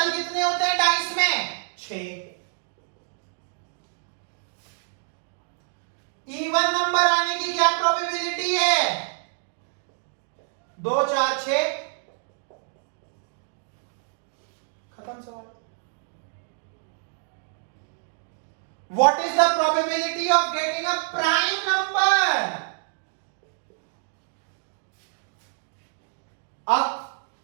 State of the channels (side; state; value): left; silent; digital silence